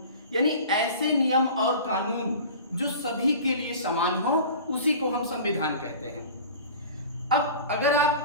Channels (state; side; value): inverted; both; correlation -0.39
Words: यानी ऐसे नियम और कानून जो सभी के लिए समान हो, उसी को हम संविधान कहते हैं। अब अगर